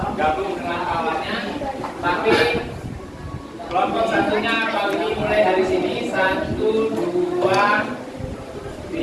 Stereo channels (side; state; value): both; identical; correlation 1.00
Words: gabung dengan kawannya. Tapi kelompok satunya Pak Widi mulai dari sini 1, 2,